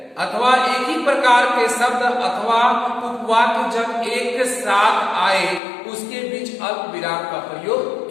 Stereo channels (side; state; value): right; drops out; at 5.6 s